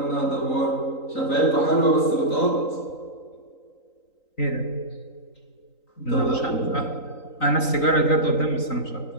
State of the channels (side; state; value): right; late; 3.9 ms